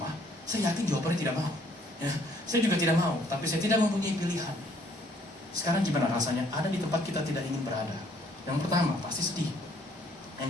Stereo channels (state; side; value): normal; both; correlation 0.63